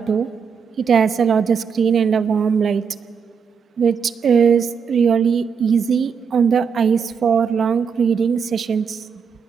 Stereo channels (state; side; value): quieter; left; 6.4 dB